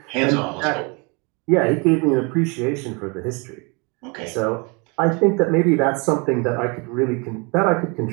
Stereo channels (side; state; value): left; quieter; 30.7 dB